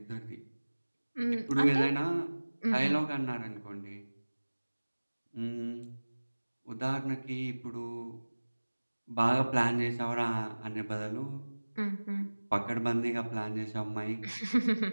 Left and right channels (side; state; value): both; inverted; correlation -1.00